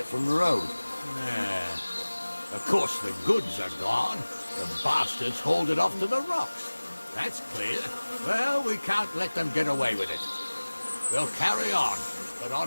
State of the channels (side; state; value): both; inverted; correlation -1.00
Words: from the road. Of course, the goods are gone. The bastards hauled it off to the rocks. That's clear. Well, we can't let them get away with it. We'll carry on, but